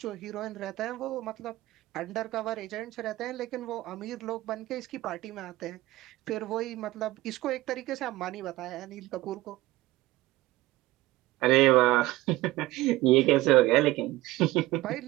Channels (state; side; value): quieter; left; 18.0 dB